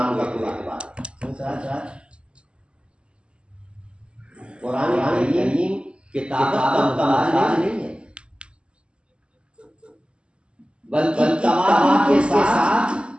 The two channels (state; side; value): late; left; 0.053 ms